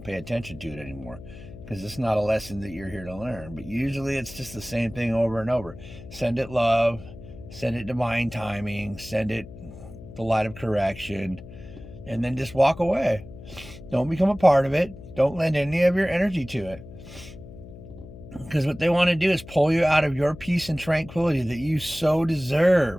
pay attention to it anymore, because it's not a lesson that you're here to learn. But usually it's just the same thing over and over. Send it love, send it divine timing, send it the light of correction, and then just walk away. Don't become a part of it. Don't lend any of your energy to it. Because what they want to do is pull you out of your peace and tranquility that you so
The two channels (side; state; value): left; noise; hum, 16 dB below the sound